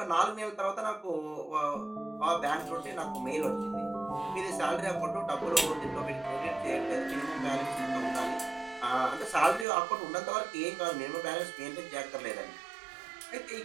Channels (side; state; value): left; drops out; at 9.7 s